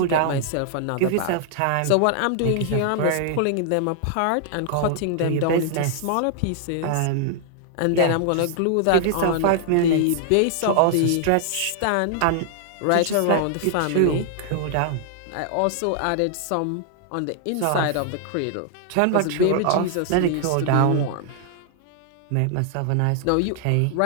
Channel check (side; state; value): both; different; correlation 0.00